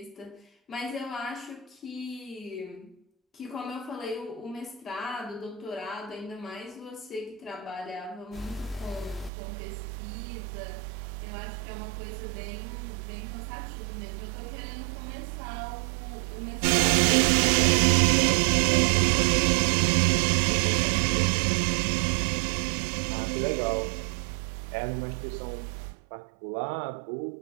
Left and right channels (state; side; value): drops out; left; at 9.3 s